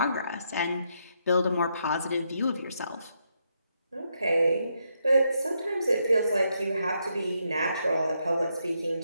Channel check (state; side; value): inverted; both; correlation -0.78